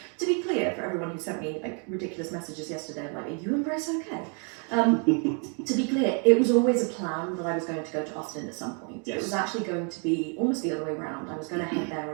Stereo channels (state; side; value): quieter; left; 38.4 dB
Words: To be clear, for everyone who sent me ridiculous messages yesterday, like, are you and Brace okay? To be clear, it was always a plan that I was going to go to Austin at some point. Yes. It was actually going to be almost the other way around. I was going to head there